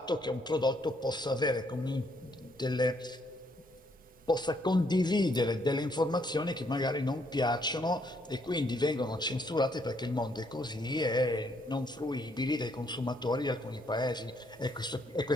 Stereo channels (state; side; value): normal; both; correlation 0.71